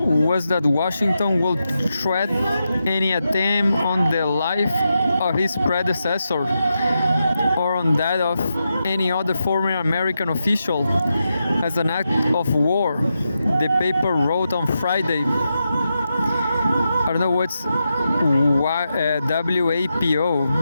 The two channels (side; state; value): both; inverted; correlation -0.87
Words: was that Washington will threat any attempt on the life of his predecessor or on that of any other former American official as an act of war, the paper wrote on Friday. I don't know what's WAPO